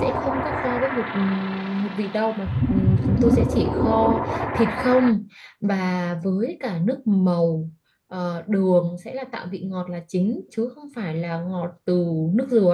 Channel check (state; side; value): identical; both; correlation 1.00